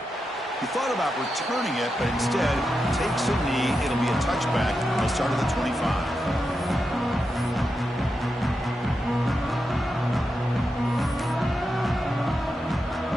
He thought about returning it, but instead takes a knee. It'll be a touchback. They'll start at the 25.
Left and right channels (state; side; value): normal; both; correlation 0.88